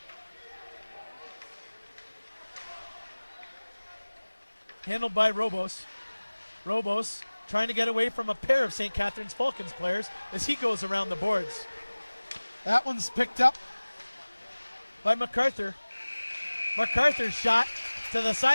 Handled by Robos. Robos trying to get away from a pair of St. Catharines Falcons players as he goes around the boards. That one's picked up by MacArthur. MacArthur's shot to the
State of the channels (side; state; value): both; inverted; correlation -1.00